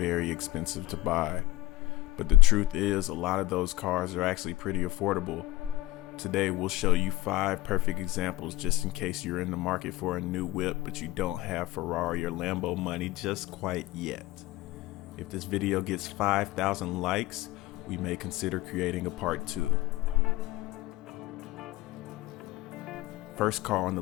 expensive to buy. But the truth is, a lot of those cars are actually pretty affordable. Today we'll show you 5 perfect examples just in case you're in the market for a new whip but you don't have Ferrari or Lambo money just quite yet. If this video gets 5,000 likes, we may consider creating a part 2. First car on the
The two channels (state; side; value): quieter; right; 17.3 dB